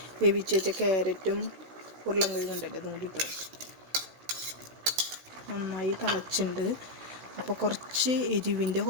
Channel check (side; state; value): left; late; 16 ms